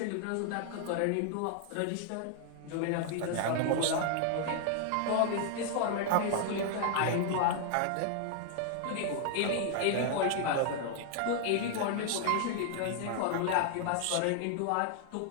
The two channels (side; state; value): both; different; correlation 0.00